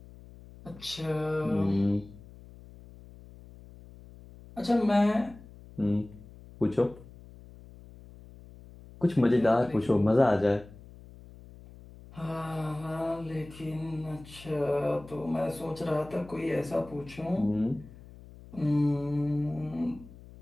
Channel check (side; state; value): left; noise; hum, 19 dB below the sound